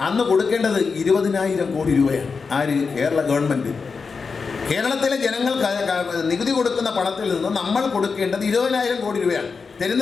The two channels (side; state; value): right; quieter; 5.0 dB